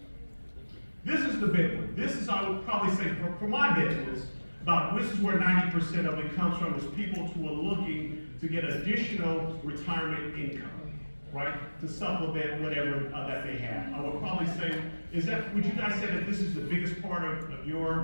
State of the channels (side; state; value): both; inverted; correlation -1.00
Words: This is the big one. This is, I would probably say, for my business, this is where 90% of it comes from, is people who are looking to get additional retirement income, right? To supplement whatever that they have. I would probably say, would you guys say that this is the biggest part of